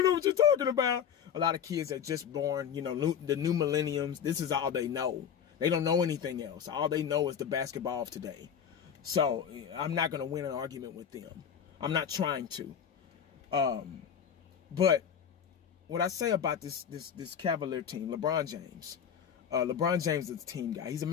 know what you're talking about. A lot of kids are just born, you know, the new millenniums. This is all they know. They don't know anything else. All they know is the basketball of today. So I'm not going to win an argument with them. I'm not trying to. But what I say about this Cavalier team, LeBron James. LeBron James is a team guy. He's a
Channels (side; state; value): right; quieter; 8.1 dB